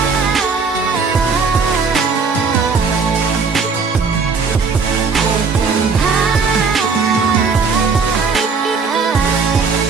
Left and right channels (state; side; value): quieter; left; 5.0 dB